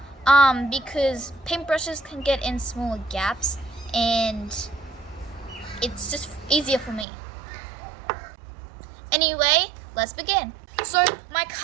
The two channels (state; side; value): drops out; left; at 7.1 s